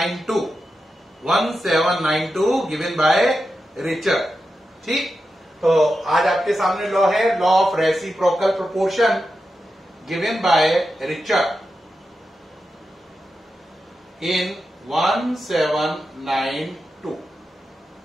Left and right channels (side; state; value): both; normal; correlation 0.89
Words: गिवन बाय रिचर। ठीक, तो आज आपके सामने लॉ है law of reciprocal proportion given by Richter in 1792।